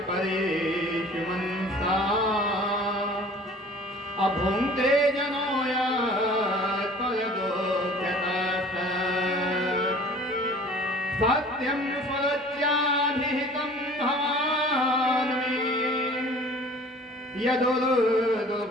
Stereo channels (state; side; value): normal; both; correlation 0.47